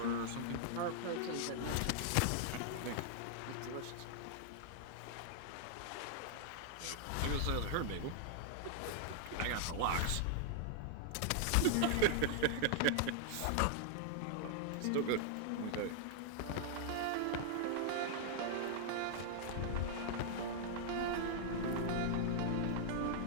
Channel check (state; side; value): different; both; correlation -0.01